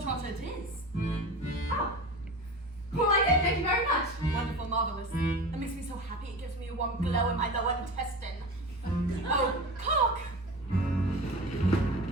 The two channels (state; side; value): normal; both; correlation 0.31